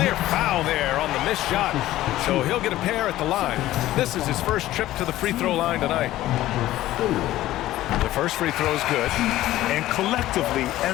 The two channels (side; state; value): right; quieter; 15.0 dB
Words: foul there on the missed shot. So he'll get a pair at the line. This is his first trip to the free throw line tonight. The first free throw is good. And collectively,